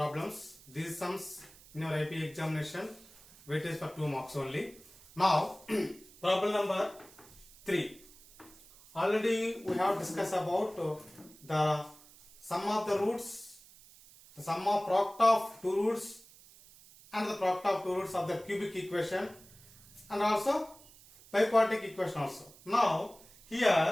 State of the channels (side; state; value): right; noise; hiss, 23 dB below the sound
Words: These sums in your IP examination, weightage for 2 marks only. Now, problem number 3. Already we have discussed about the sum of the roots, the sum of product of two roots and the product of two roots of the cubic equation and also biquadratic equation also. Now,